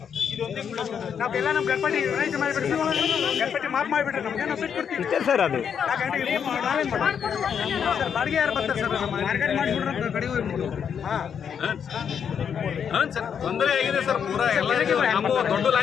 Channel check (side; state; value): right; quieter; 7.6 dB